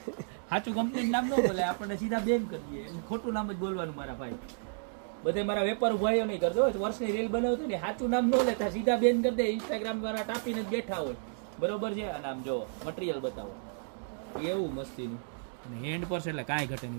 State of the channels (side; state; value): left; silent; digital silence